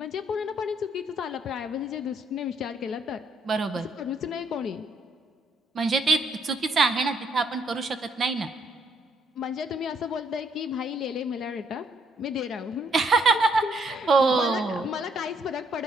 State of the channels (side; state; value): both; normal; correlation 0.70